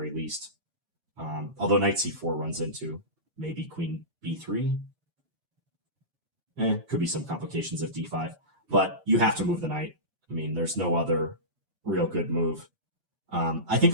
least. Although knight c4 runs into maybe queen b3. Could be some complications of d5, but you have to move the knight. I mean, there's no other real good move. I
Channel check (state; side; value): late; left; 6.7 ms